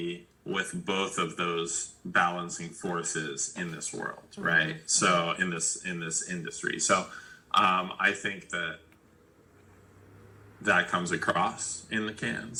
with both of those balancing forces in this world, right? So in this industry. So I think that comes across in the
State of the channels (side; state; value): both; identical; correlation 1.00